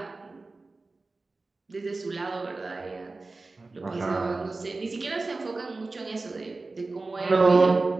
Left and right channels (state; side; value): quieter; left; 3.5 dB